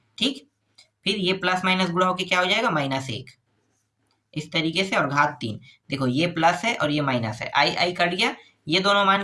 ठीक। फिर ये प्लस माइनस गुणा होकर क्या हो जाएगा, -1, इस तरीके से, और घात 3, देखो ये प्लस है और ये माइनस है, i कट गया, ये दोनों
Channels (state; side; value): identical; both; correlation 1.00